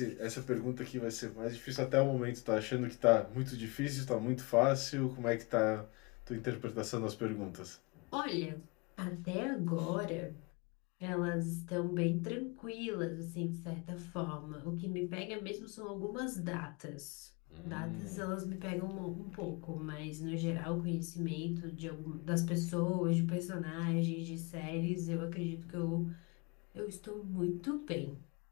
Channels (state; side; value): quieter; right; 28.1 dB